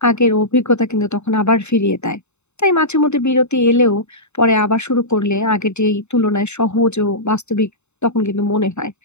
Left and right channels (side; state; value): right; late; 0.82 ms